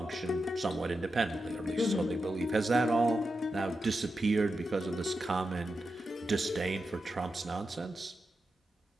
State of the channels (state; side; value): normal; both; correlation 0.89